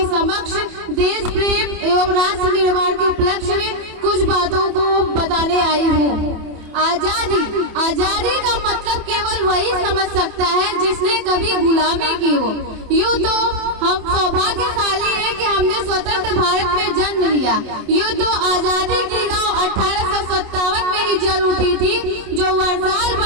समक्ष देश प्रेम एवं राष्ट्र निर्माण के उपलक्ष्य में कुछ बातों को बताने आई हूँ। आजादी का मतलब केवल वही समझ सकता है जिसने कभी गुलामी की हो। यूँ तो हम सौभाग्यशाली है कि हमने स्वतंत्र भारत में जन्म लिया। यूँ तो आजादी की नाव 1857 में ही जल उठी थी, जो वर्षाल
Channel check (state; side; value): late; left; 27 ms